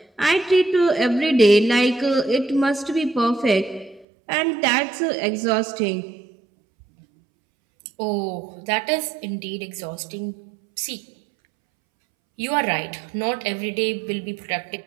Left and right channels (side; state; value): left; drops out; at 4.0 s